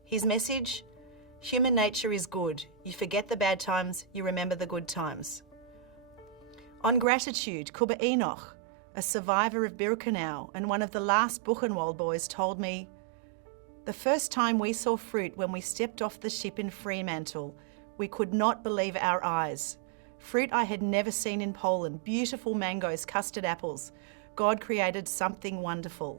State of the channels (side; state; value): left; drops out; at 7.1 s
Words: His message? Human nature is good. You forget the bad times, you remember the good times. On gratitude, Kuba Enoch, a survivor of Birkenau and one of the last Buchenwald boys, told me, "The first time we saw fruit when we stepped off the ship in Fremantle, we could not believe our eyes. Fruit I had never seen in Poland, beautiful mangoes, custard apples. God created something